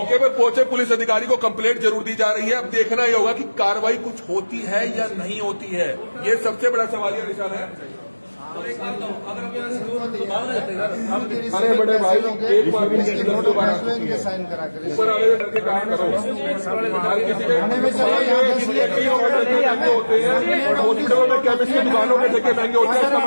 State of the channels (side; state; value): both; inverted; correlation -1.00